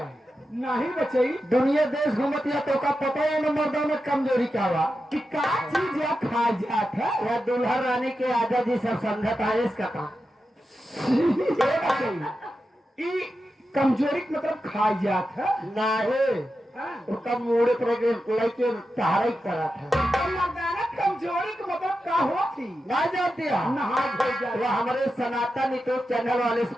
नहीं बचई, दुनिया देश घूमतिया तो का पता ही ना मर्दाना कमजोरी क्या हुआ। कि का चीज या खा जात है। या दुल्हन रानी के आजा जी सब समझता है इसका काम। ये बचई, ई कमजोरी का मतलब खा जात है। नहीं, उसका मुड़े पर लेके सहारा करा था। मर्दाना कमजोरी का मतलब का होती? ना जानती है? नहा धो जा। वो हमारे सनातन यूट्यूब चैनल वाले से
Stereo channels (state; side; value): normal; both; correlation 0.90